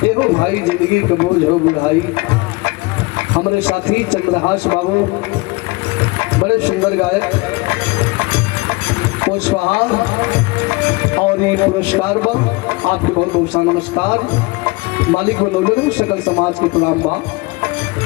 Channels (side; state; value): right; quieter; 24.7 dB